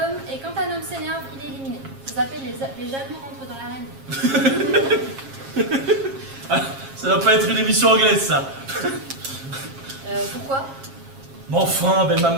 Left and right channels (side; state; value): left; late; 7.4 ms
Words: et quand un homme s'énerve, il est éliminé. Ça s'appelle les jaloux rentrent dans l'arène. Ah, ça doit pas être une émission anglaise, ça. Pourquoi? Mais enfin, belle